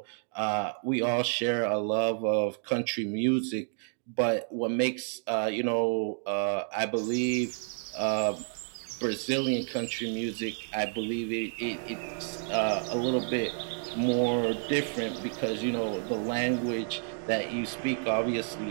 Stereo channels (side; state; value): left; silent; 58 dB below the other